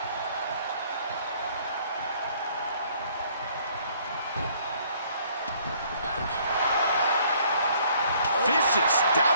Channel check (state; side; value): inverted; both; correlation -0.61